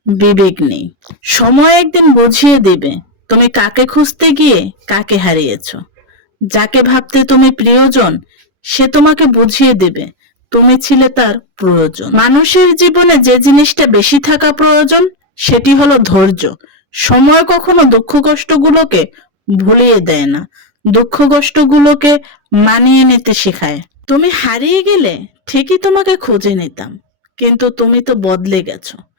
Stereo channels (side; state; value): left; late; 10 ms